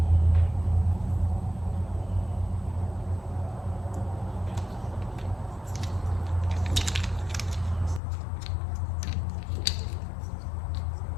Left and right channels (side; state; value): right; drops out; at 8.0 s